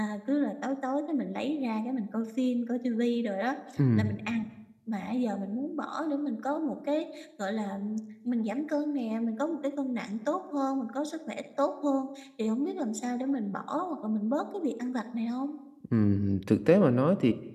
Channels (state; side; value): identical; both; correlation 1.00